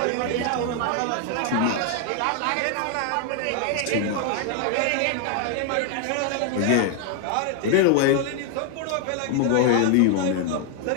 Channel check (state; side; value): different; both; correlation 0.00